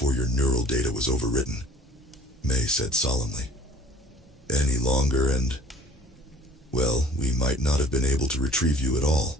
your neural data was overwritten, May said solemnly. Any longer and, well, we might not have been able to retrieve you at all.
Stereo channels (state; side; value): normal; both; correlation 0.50